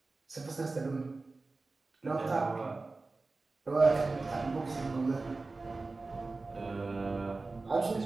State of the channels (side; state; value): left; quieter; 3.6 dB